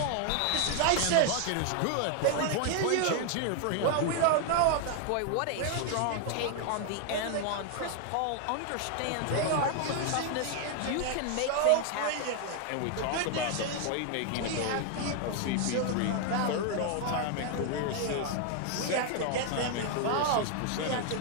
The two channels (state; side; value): different; both; correlation 0.00